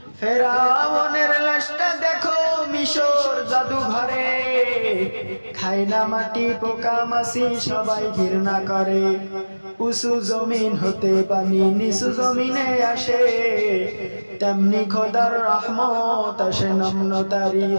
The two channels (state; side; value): inverted; both; correlation -1.00